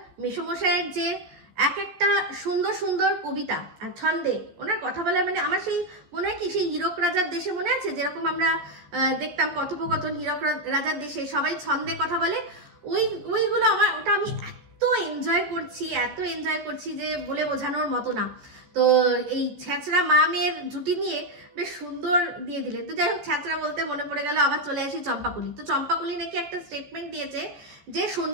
মেসমশাইয়ের যে এক একটা সুন্দর সুন্দর কবিতা আর ছন্দে ওনার কথা বলা, মানে আমার সেই মনে হয় কি সেই হীরক রাজার দেশে মনে আছে যেরকম আমরা দেখতাম কথোপকথন, হীরক রাজার দেশে সবাই ছন্দে কথা বলে, ওইগুলো আমার, ওটা আমি এত এনজয় করছি যে বলে বোঝানোর মতো না। তো এই ছ্যাঁচড়া মা মেয়ের জুটি নিয়ে বেশ সুন্দর দিয়ে দিলেন। তো যাই হোক, ছ্যাঁচড়া বলতে মনে পড়ে গেল, আবার চলে আসি চম্পাকলি। তো চম্পাকলি নাকি একটা স্টেটমেন্ট দিয়েছে যে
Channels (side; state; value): left; late; 14 ms